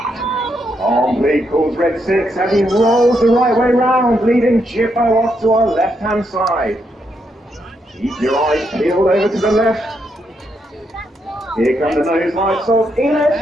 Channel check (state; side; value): normal; both; correlation 0.79